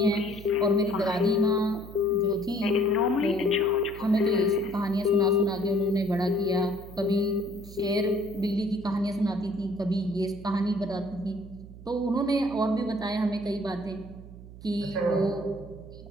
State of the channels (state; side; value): noise; right; hum, 16 dB below the sound